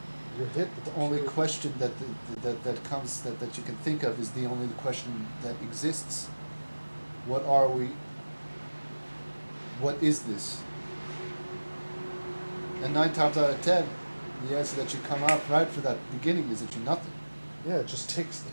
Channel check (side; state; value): both; inverted; correlation -1.00